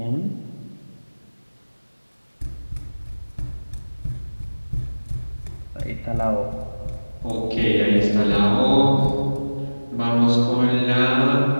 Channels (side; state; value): both; inverted; correlation -1.00